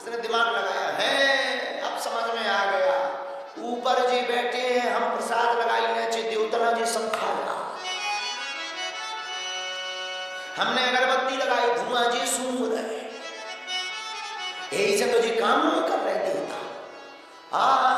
दिमाग लगाया है, अब समझ में आ गया, ऊपर जी बैठे हैं, हम प्रसाद लगाई नीचे देवतना जी सब खा रहा, हमने अगरबत्ती लगाई, धुआं जी सूंघ रहे, यही से तो जी काम नहीं कर रहे देवता।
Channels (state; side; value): identical; both; correlation 1.00